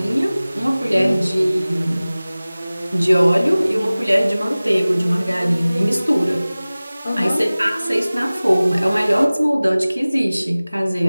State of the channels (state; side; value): inverted; both; correlation -0.98